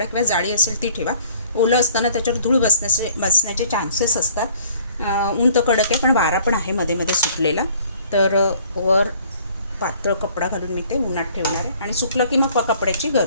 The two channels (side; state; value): both; inverted; correlation -0.56